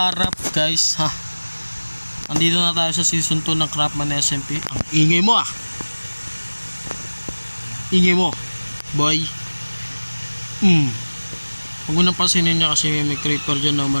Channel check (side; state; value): both; inverted; correlation -1.00